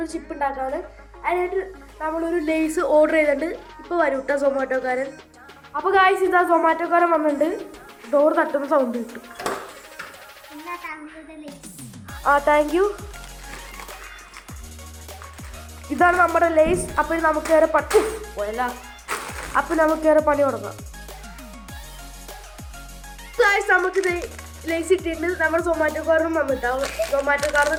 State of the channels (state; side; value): identical; both; correlation 1.00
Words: ചിപ്പ് ഉണ്ടാക്കാണ്. അതിനായിട്ട് നമ്മളൊരു ലേസ് ഓർഡർ ചെയ്തിട്ടുണ്ട്. ഇപ്പോൾ വരും കേട്ടോ സൊമാറ്റോക്കാരൻ. അപ്പോൾ ഗായ്സ്, ഇതാ സൊമാറ്റോക്കാരൻ വന്നിട്ടുണ്ട്. ഡോർ തട്ടുന്ന സൗണ്ട് കിട്ടും. Thank you. ഇതാണ് നമ്മുടെ ലേസ്. അപ്പോൾ നമുക്ക് വേറെ പോയല്ല. അപ്പോൾ നമുക്ക് വേറെ പണി തുടങ്ങാം. നമുക്ക് ലേസ് ഇട്ടിട്ട് നമ്മൾ സൊമാറ്റോക്കാരനും വന്നിട്ടാവും. സൊമാറ്റോക്കാരനും